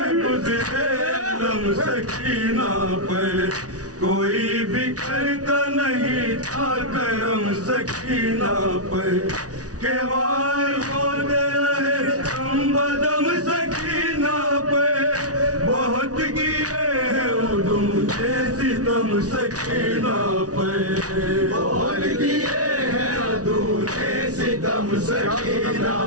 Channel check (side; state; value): left; late; 0.68 ms